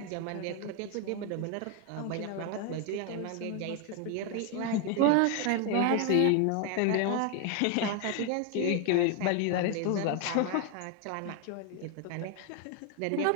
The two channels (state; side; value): different; both; correlation 0.01